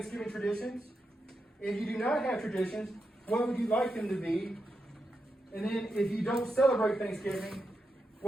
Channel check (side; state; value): both; normal; correlation 0.86